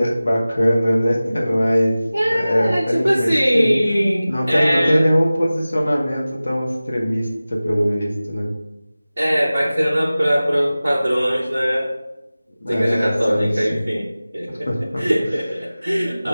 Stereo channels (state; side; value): inverted; both; correlation -0.97